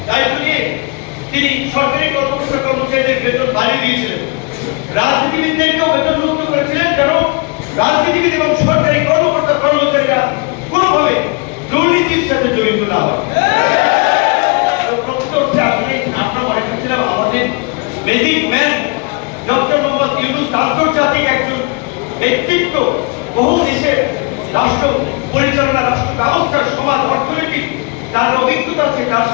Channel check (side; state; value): right; quieter; 29.9 dB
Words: দায়িত্ব নিয়ে তিনি সরকারি কর্মকর্তা কর্মচারীদের বেতন বাড়িয়ে দিয়েছিলেন, রাজনীতিবিদদেরকেও বেতন মুক্ত করেছিলেন, যেন রাজনীতিবিদ এবং সরকারি কর্মকর্তা কর্মচারীরা কোনোভাবে দুর্নীতির সাথে জড়িত না হয়। আমরা মনে করছিলাম আমাদের basic man doctor Mohammad Yunus আন্তর্জাতিক একজন ব্যক্তিত্ব, বহু দেশের রাষ্ট্র পরিচালনা, রাষ্ট্র ব্যবস্থার, সমাজ, অর্থনীতি তার অভিজ্ঞতা আছে, তার